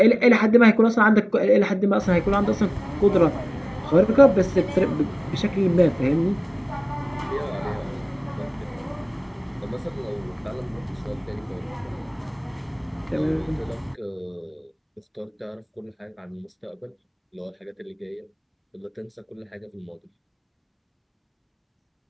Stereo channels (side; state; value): both; identical; correlation 1.00